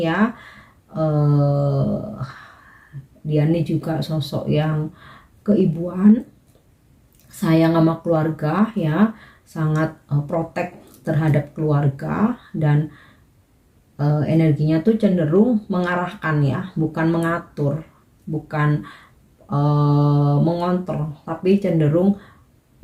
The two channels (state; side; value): identical; both; correlation 1.00